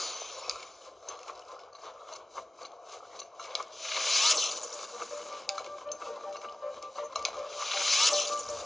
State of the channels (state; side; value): normal; both; correlation 0.96